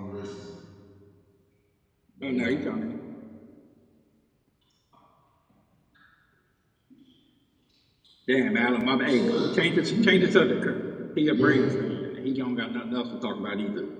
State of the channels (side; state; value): both; identical; correlation 1.00